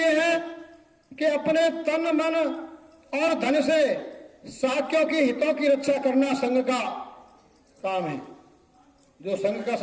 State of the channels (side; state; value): both; identical; correlation 1.00